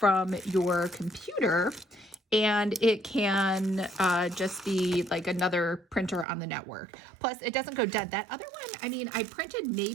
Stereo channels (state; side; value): drops out; left; at 6.2 s